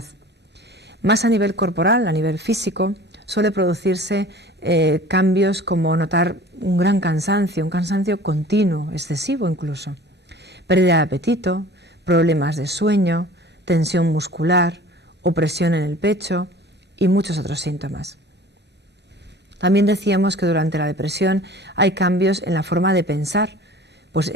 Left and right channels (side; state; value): both; normal; correlation 0.44